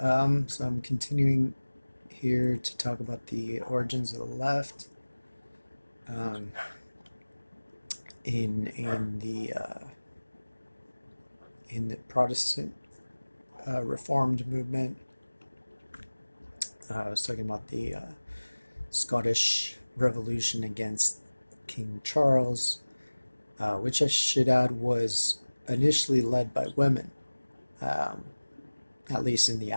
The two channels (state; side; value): inverted; both; correlation -1.00